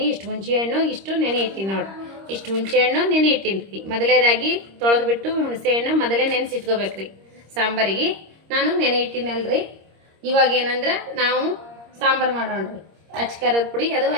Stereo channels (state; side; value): late; left; 26 ms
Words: ಇಷ್ಟು ಹುಣಸೆ ಹಣ್ಣು, ಇಷ್ಟು ನೆನೆ ಇಟ್ಟಿನಿ ನೋಡ್ರಿ. ಇಷ್ಟು ಹುಣಸೆ ಹಣ್ಣು ನೆನೆ ಇಟ್ಟಿನಿ. ಮೊದಲೇದಾಗಿ ತೊಳೆದ್ಬಿಟ್ಟು ಹುಣಸೆ ಹಣ್ಣು ಮೊದಲೇ ನೆನೆಸಿಟ್ಕೋಬೇಕ್ರಿ ಸಾಂಬಾರಿಗೆ. ನಾನು ನೆನೆ ಇಟ್ಟಿನಲ್ರಿ. ಇವಾಗ ಏನಂದ್ರೆ ನಾವು ಸಾಂಬಾರು ಮಾಡೋಣ್ರಿ. ಅಚ್ಕಾರದ ಪುಡಿ ಅದು